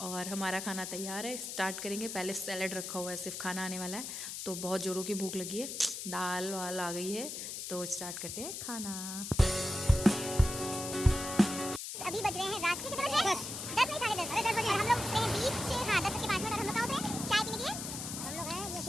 और हमारा खाना तैयार है, स्टार्ट करेंगे। पहले सैलड रखा हुआ है, सिर्फ खाना आने वाला है, तो बहुत ज़ोरों की भूख लगी है। दाल वाल आ गई है, तो स्टार्ट करते हैं खाना। अभी बज रहे हैं रात के कितने बजे? 10 नहीं 10:30। अरे 10 बजे हम लोग से बीच से, हाँ 10 के 5 मिनट। और हम लोग कहाँ पे चाय पीने के लिए? हम लोग हैं ये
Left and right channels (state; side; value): noise; left; hiss, 6 dB below the sound